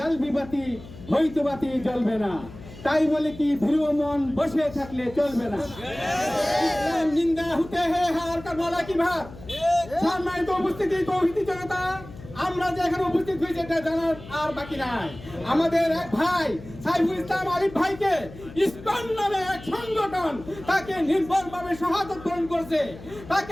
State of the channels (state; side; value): noise; left; hum, 16 dB below the sound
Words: বিবাতি হইতবাতি জ্বলবে না, তাই বলে কি ধ্রুব মন বসে থাকলে চলবে না। ইসলাম জিন্দা হতে হে হার কা বলা কি ভাব। সম্মানিত উপস্থিতি তৌহিদি জনতা, আমরা যে এখানে উপস্থিত হয়েছি এটা জানার আর বাকি নাই। আমাদের এক ভাই সাইফুল ইসলাম আলিফ ভাইকে ইসকন নামে এক সংগঠন তাকে নির্ভরভাবে সহায়তা প্রদান করছে।